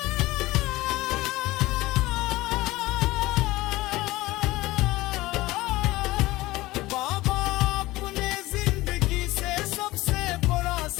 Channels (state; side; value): quieter; right; 18.8 dB